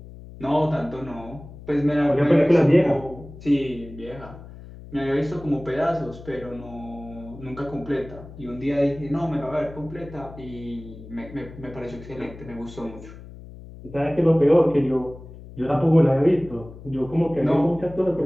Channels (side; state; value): left; noise; hum, 16 dB below the sound